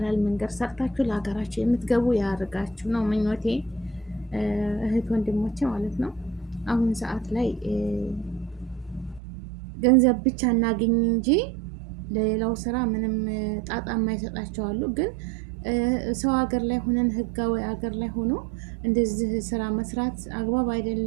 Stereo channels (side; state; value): left; drops out; at 9.2 s